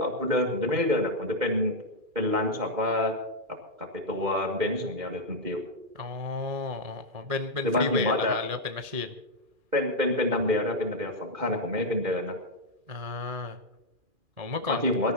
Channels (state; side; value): late; left; 2.4 ms